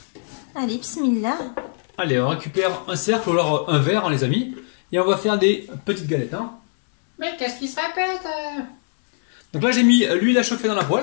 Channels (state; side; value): silent; right; 64 dB below the other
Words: Allez, bismillah. Allez, on récupère un cercle ou alors un verre, hein, les amis. Et on va faire des petites galettes. Hein. Mais qu'est-ce qui se répète Donc là, j'ai mis l'huile à chauffer dans la